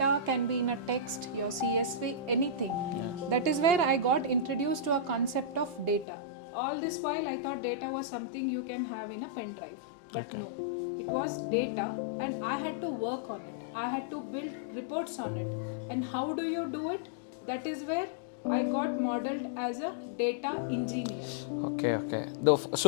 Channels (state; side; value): drops out; right; at 6.1 s